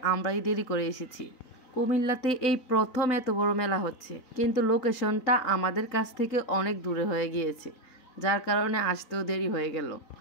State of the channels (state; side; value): late; right; 3.9 ms